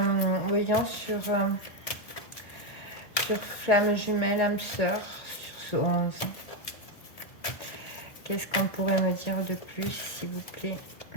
voyons, sur Flamme Jumelle, âme sœur, sur ce 11. Qu'est-ce qu'on pourrait me dire de plus, s'il vous plaît?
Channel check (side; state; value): right; late; 1.5 ms